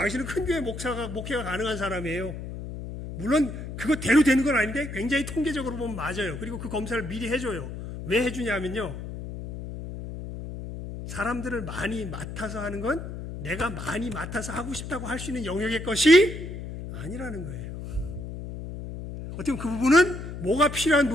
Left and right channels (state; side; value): noise; left; hum, 8 dB below the sound